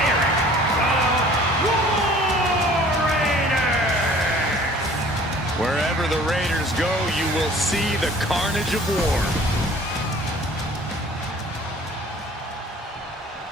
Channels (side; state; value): both; normal; correlation 0.50